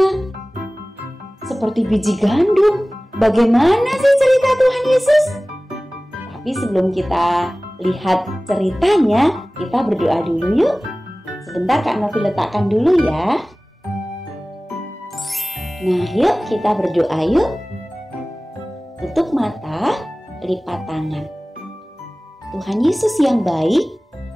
seperti biji gandum. Bagaimana sih cerita Tuhan Yesus? Tapi sebelum kita lihat ceritanya, kita berdoa dulu yuk. Sebentar Kak Novi letakkan dulu ya. Nah, yuk kita berdoa yuk. Tutup mata, lipat tangan. Tuhan Yesus yang baik,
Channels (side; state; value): both; normal; correlation 0.98